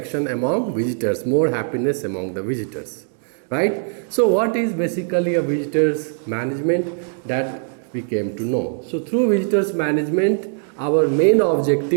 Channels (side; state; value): left; silent; digital silence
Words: among visitors, more happiness among the visitors, right? So what is basically a visitors management, that we came to know. So through visitors management, our main